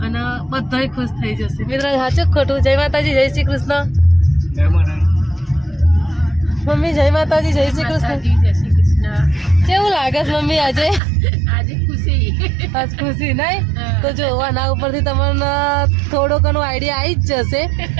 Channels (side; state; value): left; drops out; at 11.0 s